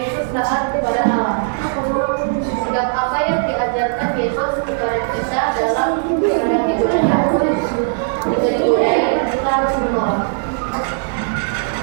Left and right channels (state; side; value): silent; left; 67 dB below the other